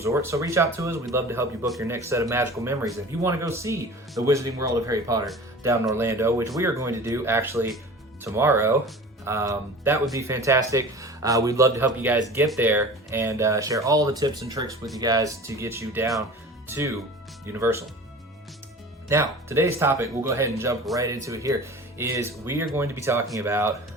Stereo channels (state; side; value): normal; both; correlation 0.39